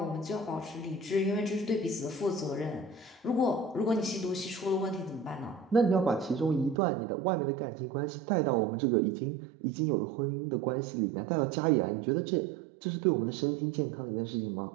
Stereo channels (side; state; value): left; drops out; at 6.8 s